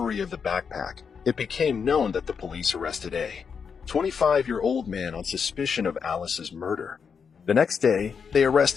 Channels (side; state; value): right; quieter; 6.3 dB